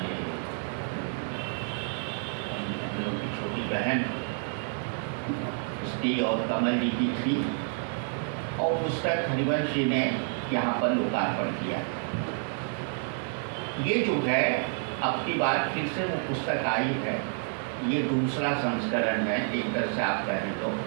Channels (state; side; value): silent; left; 59 dB below the other